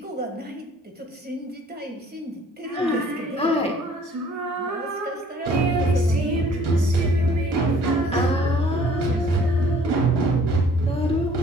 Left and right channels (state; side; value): normal; both; correlation 0.56